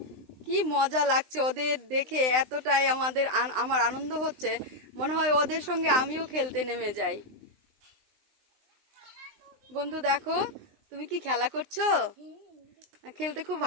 কি মজা লাগছে ওদের দেখে, এতটাই আমার আনন্দ হচ্ছে, মনে হয় ওদের সঙ্গে আমিও খেলতে নেমে যাই। বন্ধু দেখো, তুমি কি খেলা করছো? খেলতে খুব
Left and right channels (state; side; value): late; left; 20 ms